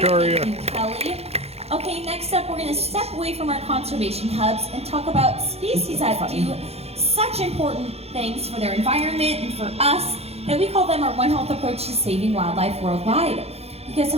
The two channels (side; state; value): left; late; 0.30 ms